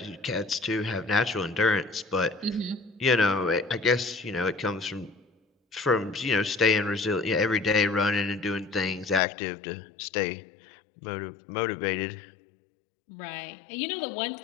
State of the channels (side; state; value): right; drops out; at 9.2 s